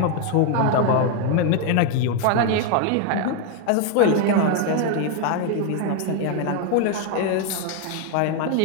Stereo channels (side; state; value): both; different; correlation 0.01